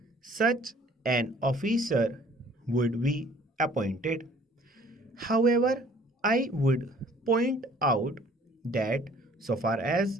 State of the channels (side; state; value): both; normal; correlation 0.55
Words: such an officer would be appointed. However, I would point out that so far as